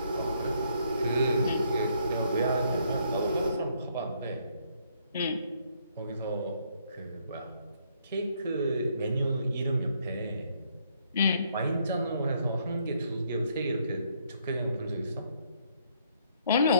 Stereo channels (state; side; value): inverted; both; correlation -0.69